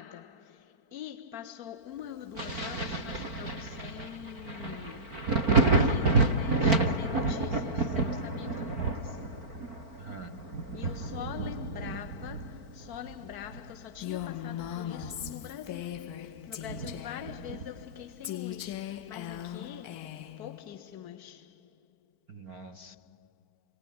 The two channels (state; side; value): late; left; 4.5 ms